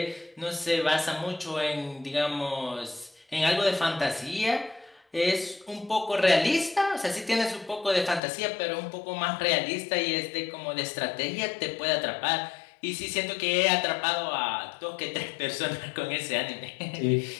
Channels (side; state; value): right; drops out; at 8.2 s